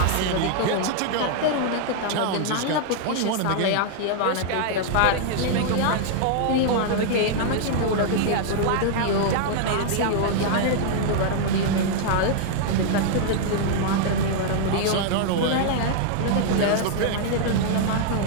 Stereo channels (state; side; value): different; both; correlation -0.01